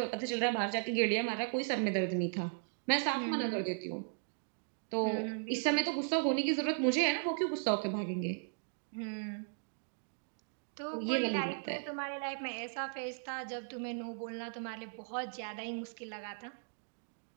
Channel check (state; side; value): silent; left; digital silence